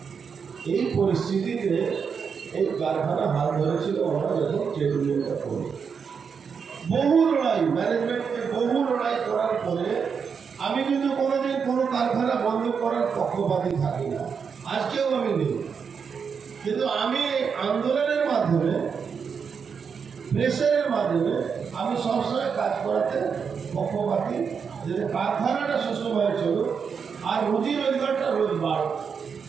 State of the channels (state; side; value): quieter; left; 6.2 dB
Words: এই পরিস্থিতিতে এই কারখানা হাল ধরেছিল আমরা যখন ট্রেড ইউনিয়নটা করি। বহু লড়াই, ম্যানেজমেন্টকে বহু লড়াই করার পরে আমি কিন্তু কোনোদিন কোনো কারখানা বন্ধ করার পক্ষপাতী থাকি না, আজকেও আমি নেই। কিন্তু আমি আন্দোলনের মাধ্যমে, প্রেসারের মাধ্যমে আমি সবসময় কাজ করাতে পক্ষপাতী, যে কারখানাটা সুস্থভাবে চলুক আর রুজি রোজগারটা রোজ বাড়ুক।